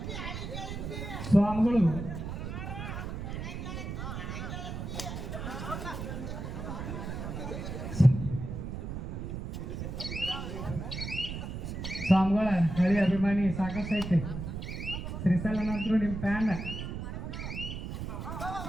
ಸ್ವಾಮಿಗಳು ಸ್ವಾಮಿಗಳ ಹಳಿ ಅಭಿಮಾನಿ ಸಾಕಷ್ಟು ಐತೆ. ಶ್ರೀಸಲ ನಂತರ ನಿಮ್ಮ ಫ್ಯಾನ್.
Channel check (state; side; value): noise; right; rumble, 6 dB below the sound